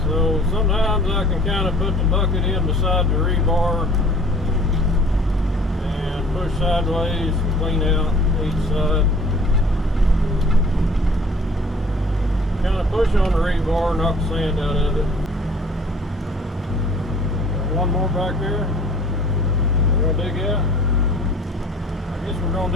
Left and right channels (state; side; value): normal; both; correlation 0.51